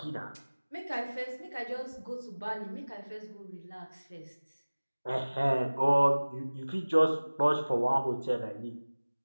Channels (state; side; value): inverted; both; correlation -1.00